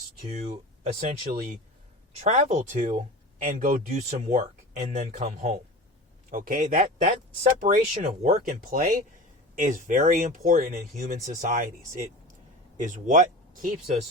to essentially travel to and go do some work and then come home. Okay? That separation of work and play is very important in human societies. It is what keeps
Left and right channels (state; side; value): normal; both; correlation 0.33